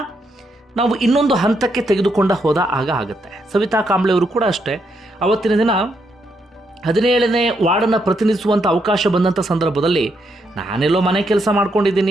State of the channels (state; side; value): normal; both; correlation 0.78